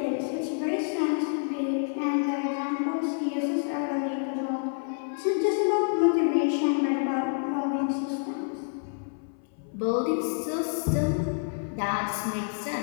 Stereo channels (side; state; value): right; silent; 59 dB below the other